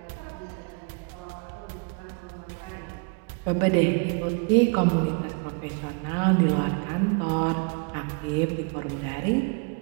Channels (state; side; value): quieter; left; 34.8 dB